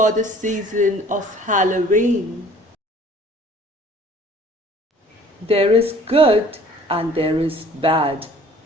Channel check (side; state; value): both; normal; correlation 0.52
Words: the season of Halloween. There is good and there is bad